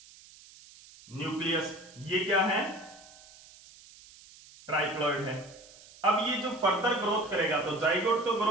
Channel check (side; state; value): right; noise; hiss, 22 dB below the sound